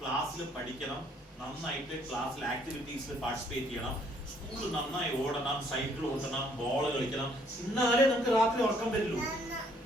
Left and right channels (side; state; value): both; normal; correlation 0.65